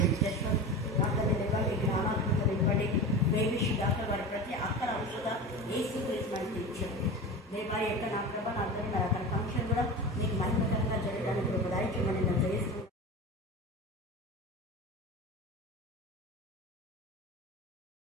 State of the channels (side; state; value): both; normal; correlation 0.29